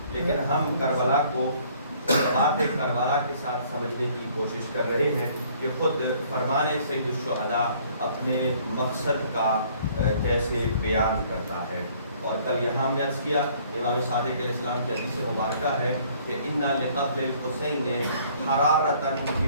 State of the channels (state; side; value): inverted; both; correlation -0.59